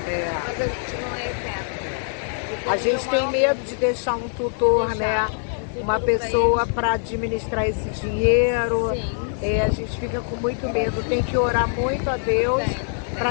Mas a gente não é eterno. A gente tem medo de deixar um tutor, né? Uma pessoa para administrar esse dinheiro. A gente fica com muito medo. Tem que orar muito a Deus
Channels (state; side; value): silent; right; digital silence